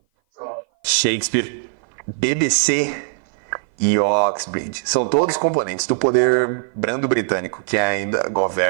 Shakespeare, BBC e Oxbridge são todos componentes do poder brando britânico que ainda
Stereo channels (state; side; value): silent; left; 57 dB below the other